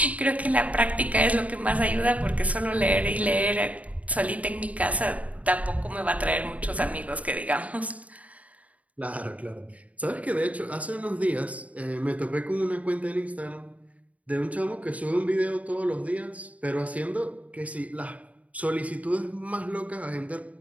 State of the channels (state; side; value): late; left; 0.069 ms